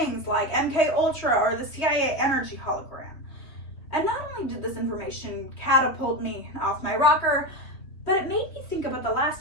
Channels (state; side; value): late; right; 3.4 ms